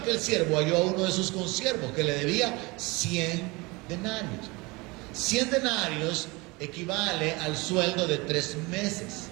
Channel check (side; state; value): left; quieter; 24.9 dB